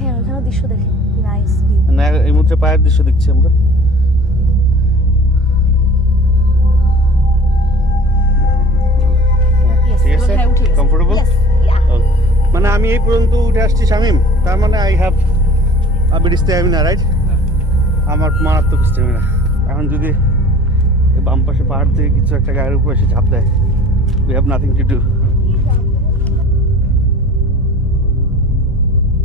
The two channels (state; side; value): normal; both; correlation 0.46